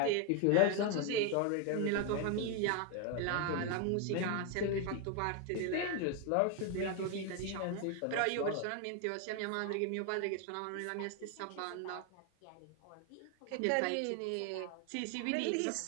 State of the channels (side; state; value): both; different; correlation 0.01